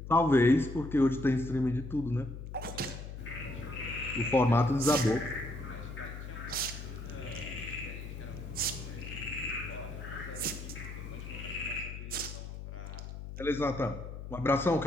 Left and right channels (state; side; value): noise; left; hum, 9 dB below the sound